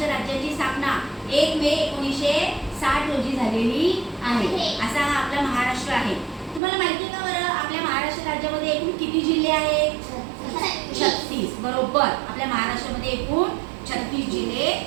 राज्याची स्थापना 1 मे 1960 रोजी झालेली आहे. असा हा आपला महाराष्ट्र आहे. तुम्हाला माहिती का बरं आपल्या महाराष्ट्र राज्यामध्ये एकूण किती जिल्हे आहेत? 36. बरोबर. आपल्या महाराष्ट्रामध्ये एकूण 36 जिल्हे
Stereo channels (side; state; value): left; drops out; at 6.6 s